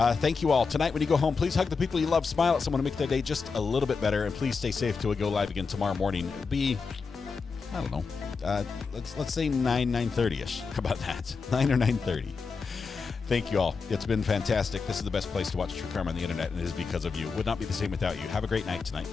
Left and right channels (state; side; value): quieter; right; 5.0 dB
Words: you all. Tonight when you go home, please hug the people you love, smile at someone to make their day just a little bit better, and please stay safe till we go live again tomorrow morning. It'll be, I don't know, let's say 9:30ish. How about that? 9 or 9:30. Thank you all. It's been fantastic. This is the best place to watch true crime on the internet, and it is because of you. It would not be the same without you. Have a great night tonight.